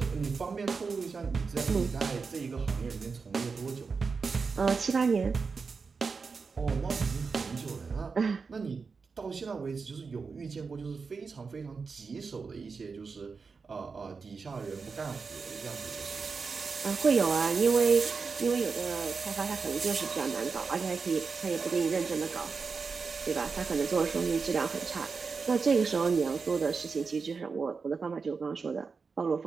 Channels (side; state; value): left; quieter; 4.9 dB